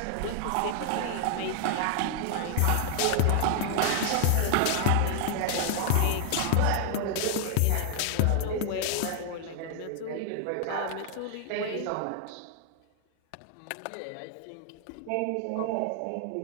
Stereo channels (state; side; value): different; both; correlation 0.00